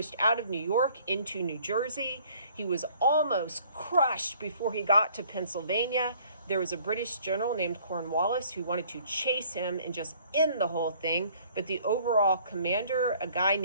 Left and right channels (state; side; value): inverted; both; correlation -0.57